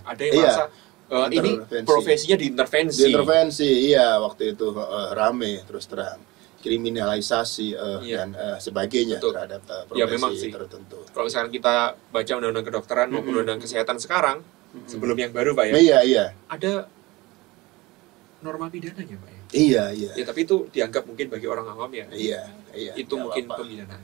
Ada yang merasa ini profesinya diintervensi. Diintervensi, iya waktu itu rame terus terang. Kriminalisasi dan sebagainya terhadap profesi tertentu. Kalau misalkan kita baca undang-undang kedokteran maupun undang-undang kesehatan sekarang, sebelum yang baru Pak ya. Iya. Ada norma pidananya Pak ya. Iya. Ya tapi itu dianggap mungkin bagi orang awam ya. Iya. Itu mungkin pemidanaan.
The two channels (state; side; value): quieter; left; 21.6 dB